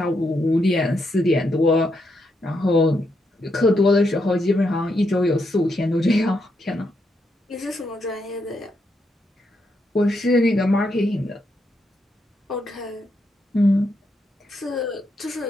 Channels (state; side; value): normal; both; correlation 0.80